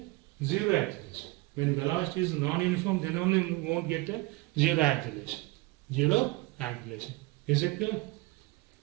zero acceleration. When velocity is non-uniform, then only you won't get a zero acceleration. Zero acceleration. Is it clear?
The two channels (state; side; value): quieter; left; 21.6 dB